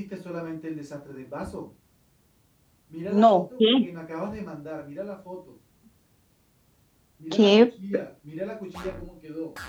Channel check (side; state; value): both; identical; correlation 1.00